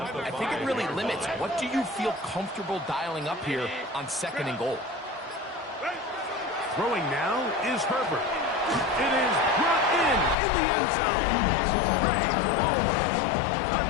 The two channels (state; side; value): drops out; right; at 10.4 s